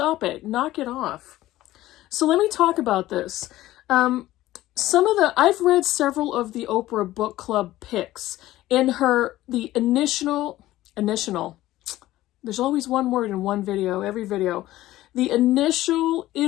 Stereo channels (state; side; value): quieter; right; 15.7 dB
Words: it, knock it off. So let me talk about this. I've read several of the Oprah book club picks. In the initial, there's always one word in one video, every video. The initial